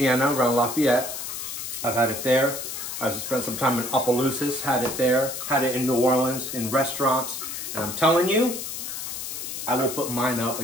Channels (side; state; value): left; noise; hiss, 6 dB below the sound